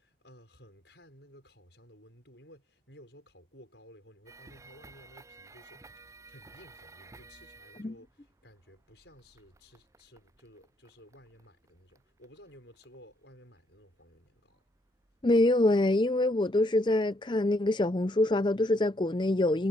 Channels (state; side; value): normal; both; correlation 0.73